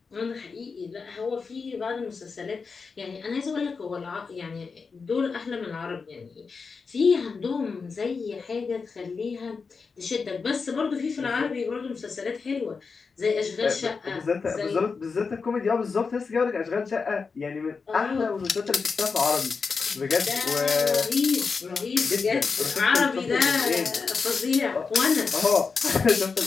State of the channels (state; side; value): quieter; right; 5.0 dB